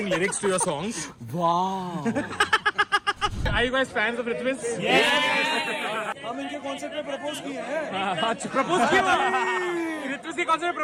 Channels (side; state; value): both; identical; correlation 1.00